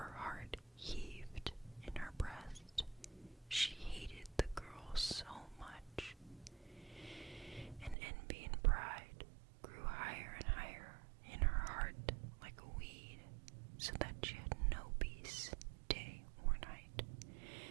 heart heaved in her breast. She hated the girl so much, and envy and pride grew higher and higher in her heart like a weed, so that she had no peace day or night.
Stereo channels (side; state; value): left; drops out; at 8.0 s